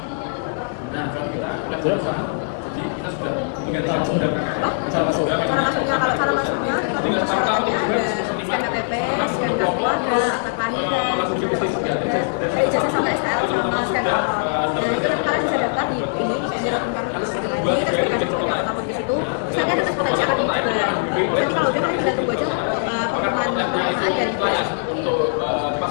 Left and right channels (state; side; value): silent; right; 58 dB below the other